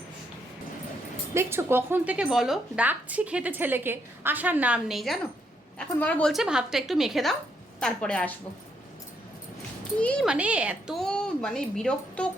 দেখছো কখন থেকে বলো ডাকছি খেতে ছেলেকে, আসার নাম নেই জানো। এখন বাবা বলছে ভাতটা একটু মেখে দাও তারপরে আসবো। কি মানে এত মানে বিরক্ত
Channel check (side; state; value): both; normal; correlation 0.75